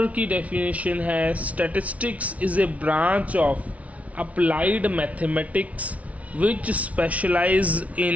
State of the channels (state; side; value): late; left; 0.067 ms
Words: की डेफिनेशन है, statistics is a branch of applied mathematics which specialise